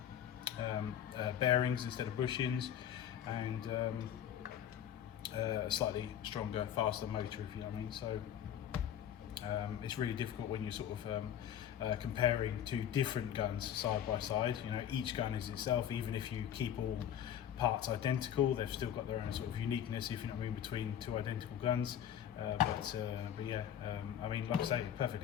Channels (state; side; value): quieter; right; 10.0 dB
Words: bearings instead of bushings, and a slightly stronger, faster motor, if you know what I mean. So it's really difficult when you're sort of comparing two different guns side by side. You know, each gun is itself, even if you keep all parts identical, they've still got their own sort of uniqueness, if you know what I mean, between two identical guns. But yeah, I mean, like I say,